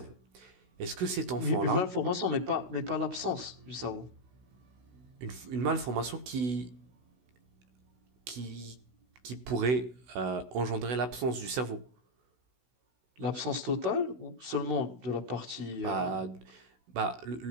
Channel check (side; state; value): left; late; 16 ms